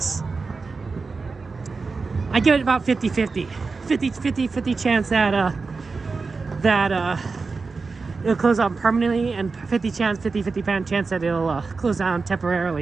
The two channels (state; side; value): quieter; left; 4.3 dB